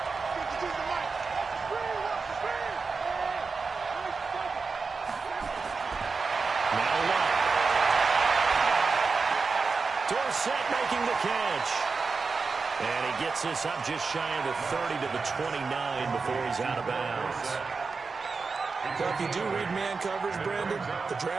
Dorsett making the catch. And he gets this up just shy of the 30 to the 29 before he's out of bounds. Well, if you do read man coverage, Brandon, the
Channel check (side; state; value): left; quieter; 4.6 dB